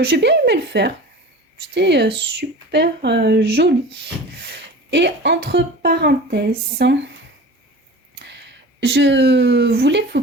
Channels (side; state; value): both; normal; correlation 0.37